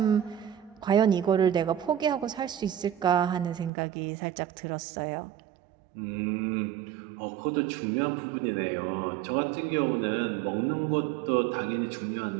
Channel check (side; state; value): left; drops out; at 3.7 s